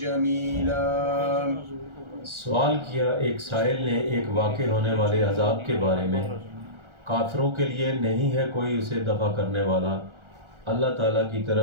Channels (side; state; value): left; late; 1.4 ms